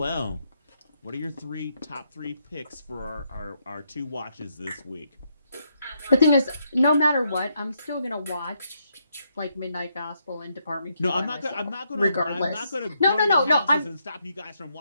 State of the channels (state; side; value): inverted; both; correlation -0.77